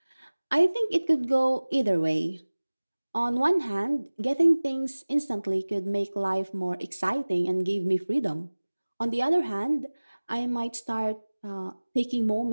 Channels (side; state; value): both; inverted; correlation -1.00